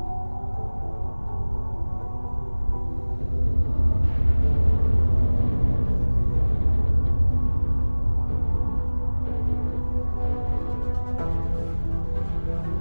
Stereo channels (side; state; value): both; inverted; correlation -1.00